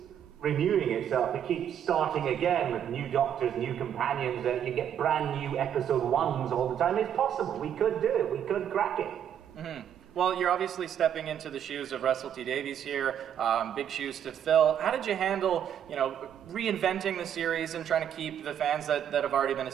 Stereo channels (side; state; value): left; quieter; 9.3 dB